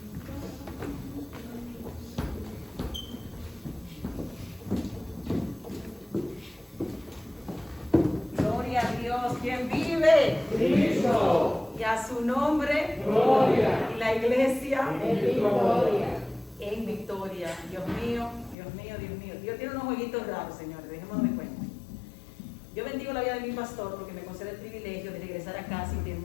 Cristo. Y a su nombre, gloria. Y la iglesia, en victoria. En victoria. Dios mío, Dios mío, Dios mío. Dios tiene unos jueguitos raros, señores, dejémonos de cuenta. Yo bendigo la vida de mi pastor porque me concede el privilegio de regresar a casa y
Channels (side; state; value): right; drops out; at 18.6 s